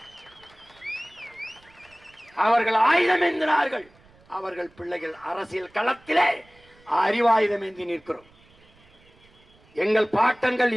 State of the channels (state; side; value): noise; right; rumble, 29 dB below the sound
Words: அவர்கள் ஆயுதம் ஏந்தினார்கள், அவர்கள் பிள்ளைகள் அரசியல் களத்திலே அறிவாயுதம் ஏந்தி நிற்கிறோம். எங்கள் பாட்டங்கள்